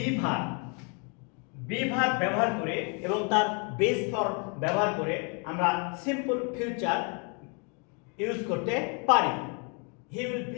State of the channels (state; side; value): quieter; right; 35.9 dB